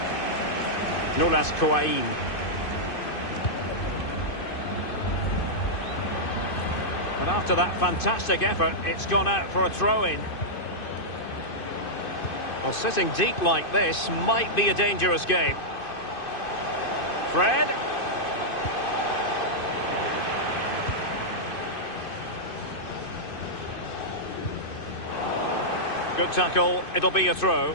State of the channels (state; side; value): late; right; 2.5 ms